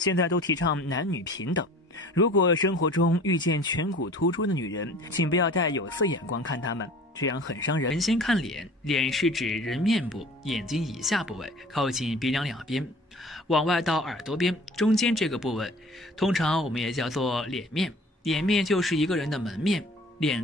在都提倡男女平等，如果生活中遇见颧骨突出的女人，请不要带有色眼光看她们，这样很伤人。先看脸，脸是指人面部，眼睛以下部位，靠近鼻梁两边，往外到耳朵边，中间这个部位，通常我们也叫做脸面。脸面就是一个人的门面。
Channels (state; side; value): normal; both; correlation 0.46